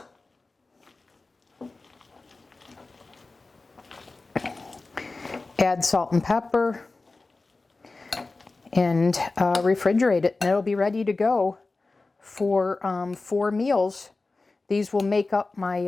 Add salt and pepper and refrigerate it, and it'll be ready to go for 4 meals. These will make up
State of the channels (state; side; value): quieter; right; 3.5 dB